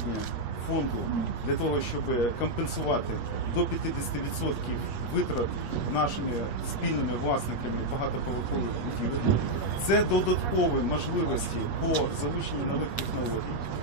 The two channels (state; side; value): late; right; 8.4 ms